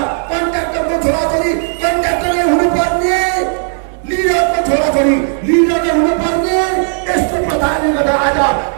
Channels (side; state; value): left; silent; 70 dB below the other